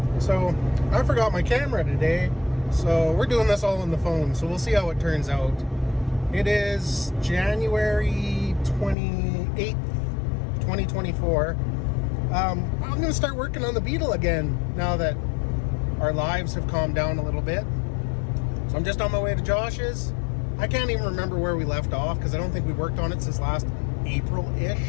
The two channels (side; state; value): right; drops out; at 9.0 s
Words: So I forgot my camera today, so we're doing this all on the phone, so we'll see how it turns out. It is January 28th, 2024. I'm going to start working on the Beetle again now that our lives have calmed down a little bit. So I'm just on my way to Josh's. I can't even remember where we left off because I don't think we worked on it since last